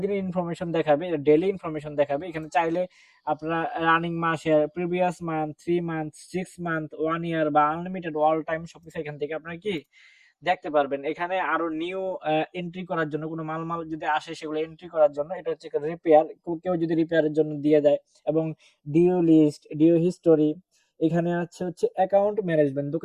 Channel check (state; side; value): identical; both; correlation 1.00